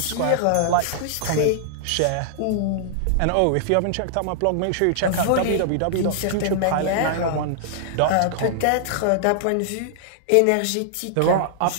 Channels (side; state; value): both; different; correlation -0.01